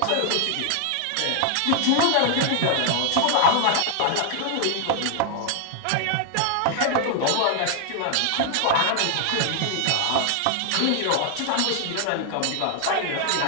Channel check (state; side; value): different; both; correlation 0.00